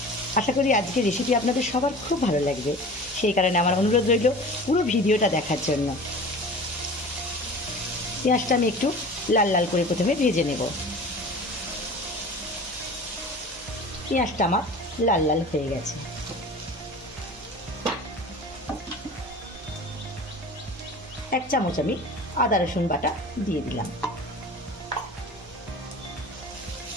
আশা করি আজকের রেসিপি আপনাদের সবার খুব ভালো লাগবে। সেই কারণে আমার অনুরোধ রইল পুরো ভিডিওটা দেখার জন্য। পেঁয়াজটা আমি একটু লাল লাল করে প্রথমে ভেজে নেব। পেঁয়াজটা আমার লাল লাল হয়ে গেছে। এক চামচ আমি আদা রসুন বাটা দিয়ে দিলাম।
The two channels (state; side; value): normal; both; correlation 0.38